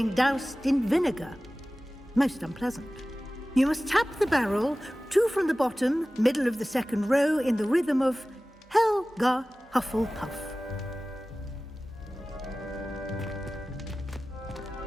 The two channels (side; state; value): both; normal; correlation 0.97